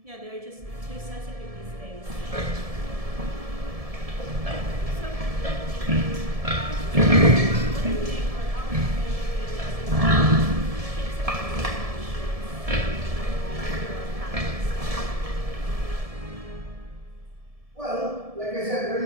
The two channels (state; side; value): late; left; 1.7 ms